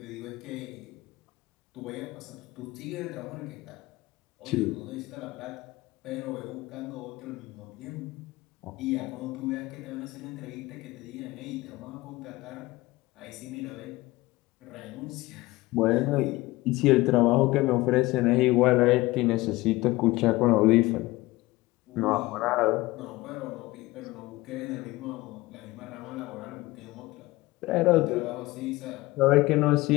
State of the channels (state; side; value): quieter; right; 19.7 dB